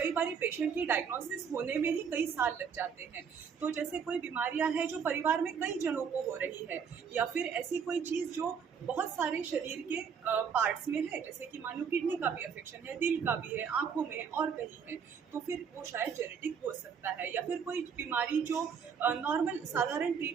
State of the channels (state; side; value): quieter; left; 6.8 dB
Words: बार पेशेंट की डायग्नोसिस होने में ही कई साल लग जाते हैं। तो जैसे कोई बीमारियां हैं जो परिवार में कई जनों को हो रही है, या फिर ऐसी कोई चीज़ जो बहुत सारे शरीर के पार्ट्स में है, जैसे कि मान लो किडनी का भी अफेक्शन है, दिल का भी है, आँखों में है और कहीं है, तो फिर वो शायद जेनेटिक हो सकता है। या फिर कोई बीमारी जो नॉर्मल साधारण